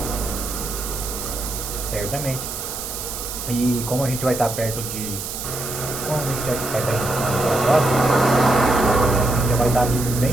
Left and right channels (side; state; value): right; noise; hiss, 7 dB below the sound